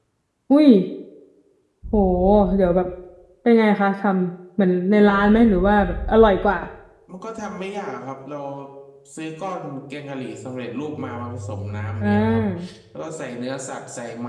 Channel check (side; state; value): both; identical; correlation 1.00